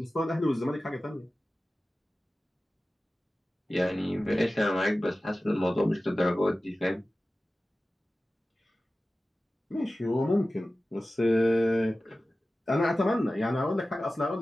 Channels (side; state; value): both; normal; correlation 0.96